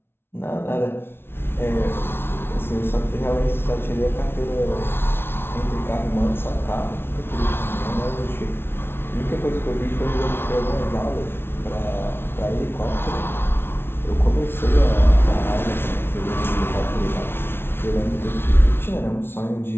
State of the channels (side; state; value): right; late; 0.11 ms